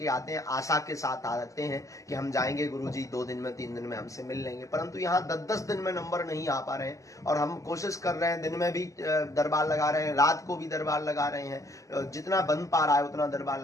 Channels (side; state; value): right; late; 0.16 ms